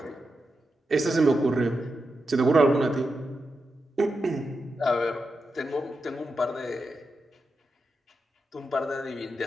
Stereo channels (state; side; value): normal; both; correlation 0.88